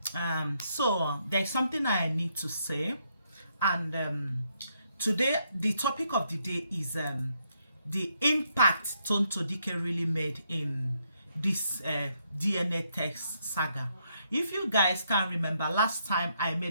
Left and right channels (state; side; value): inverted; both; correlation -0.75